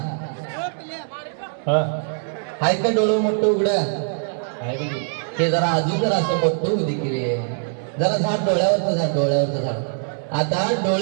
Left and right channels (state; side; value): silent; left; 64 dB below the other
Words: आहेत का डोळं मोठं उघडा? हे जरा अजून जरा असं मोठं होऊ देखील. जरा झाड डोळ्यावरचं झाड, डोळ्यावरचं झाड. आता